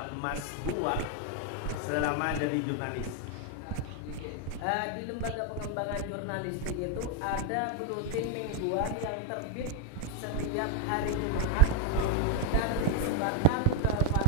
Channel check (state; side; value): different; both; correlation 0.01